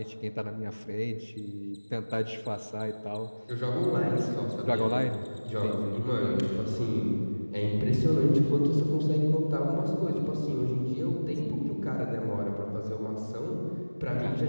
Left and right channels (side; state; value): both; inverted; correlation -1.00